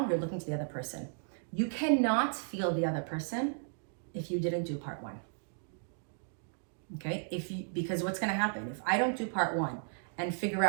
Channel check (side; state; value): left; silent; digital silence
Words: you're looking to the other person. You cannot feel the other person if you didn't do part one. Okay? Because what's going to happen? If I don't do part one and figure